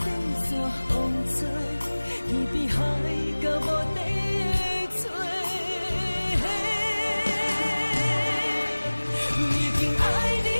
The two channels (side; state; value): both; inverted; correlation -1.00